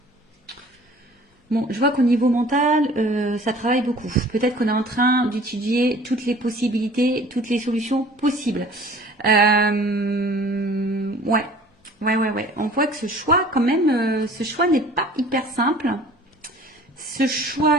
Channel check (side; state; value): both; normal; correlation 0.49